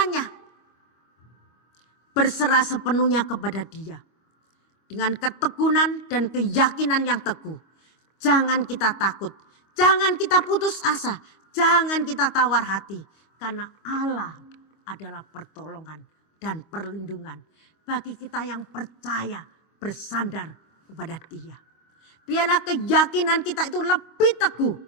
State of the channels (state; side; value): late; right; 25 ms